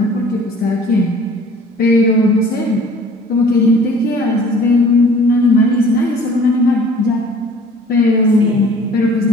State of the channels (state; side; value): normal; both; correlation 0.50